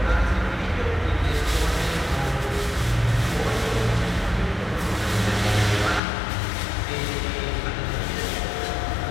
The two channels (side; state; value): right; drops out; at 6.0 s